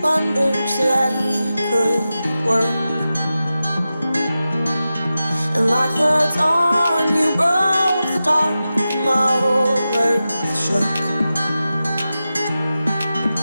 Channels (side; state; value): both; inverted; correlation -0.93